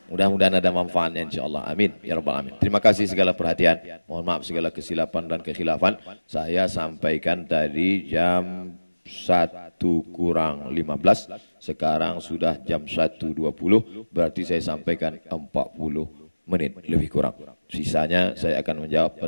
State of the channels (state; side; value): inverted; both; correlation -1.00